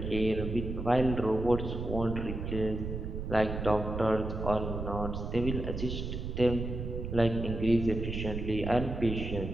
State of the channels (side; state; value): right; noise; rumble, 5 dB below the sound